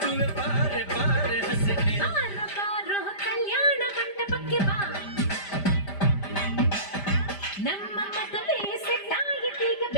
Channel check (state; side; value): late; right; 5.0 ms